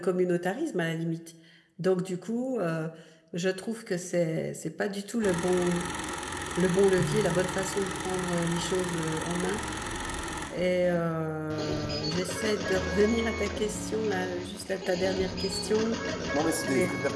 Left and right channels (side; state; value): both; identical; correlation 1.00